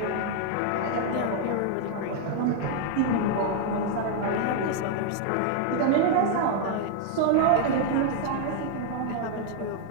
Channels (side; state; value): both; different; correlation 0.00